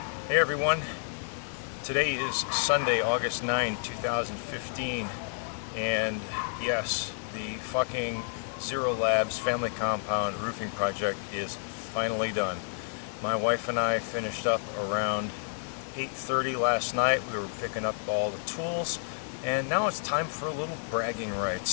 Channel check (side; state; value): right; silent; digital silence